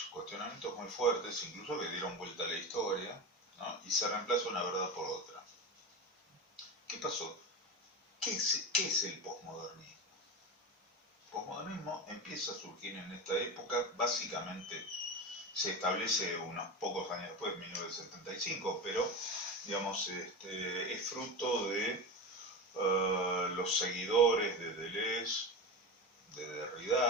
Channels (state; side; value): normal; both; correlation 0.22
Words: muy fuertes, incluso que dieron vuelta a la historia, ¿no? Y se reemplaza una verdad por otra. ¿Qué pasó? ¿Qué es el posmodernismo? El posmodernismo empieza a surgir en esta época, básicamente se establece unos pocos años después, 1975, pero digamos, es fruto de los seguidores de Deleuze, de